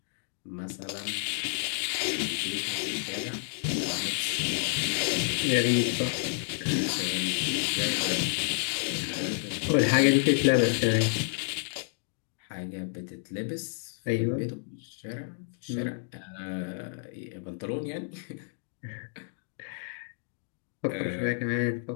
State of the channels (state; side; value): silent; right; digital silence